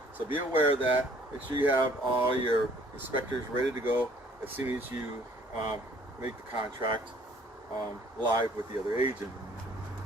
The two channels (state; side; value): normal; both; correlation 0.58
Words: So be aware of that. Make sure you have all your inspectors ready to go as soon as you make the contract live with the other agent.